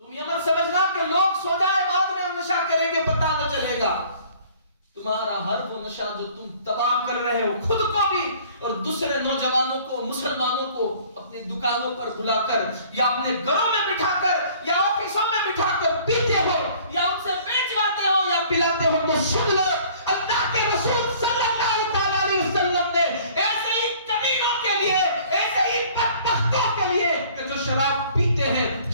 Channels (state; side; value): inverted; both; correlation -0.53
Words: تم یہ مت سمجھنا کہ لوگ سو جائے بعد میں ہم نشہ کریں گے پتہ نہ چلے گا۔ تمہارا ہر وہ نشہ جو تم تباہ کر رہے ہو خود کو بھی اور دوسرے نوجوانوں کو، مسلمانوں کو اپنی دکانوں پر بلا کر یا اپنے گھروں میں بٹھا کر یا آفیسوں میں بٹھا کر پیتے ہو یا ان سے بیچواتے ہو یا پلاتے ہو، تو سن لو اللہ کے رسول صلی اللہ علیہ وسلم نے ایسے ہی کمینوں کے لیے، ایسے ہی بدبختوں کے لیے کہ جو شراب پیتے ہیں،